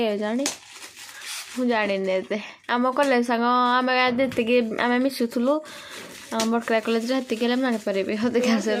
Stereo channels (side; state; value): both; identical; correlation 1.00